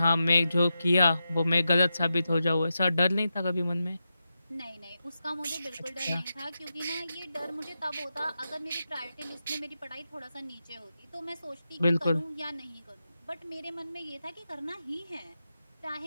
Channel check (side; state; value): both; inverted; correlation -0.89